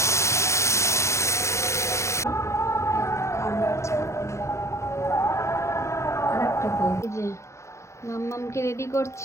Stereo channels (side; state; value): right; late; 0.14 ms